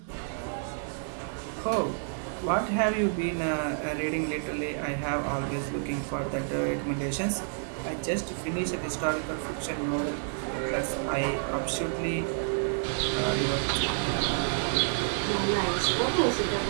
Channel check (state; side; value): silent; left; digital silence